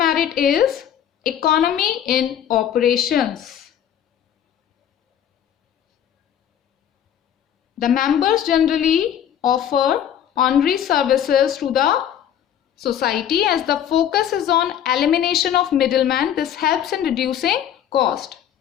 is economy in operations. The members generally offer honorary services to the society as the focus is on elimination of middlemen. This helps in reducing cost.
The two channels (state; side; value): quieter; right; 9.9 dB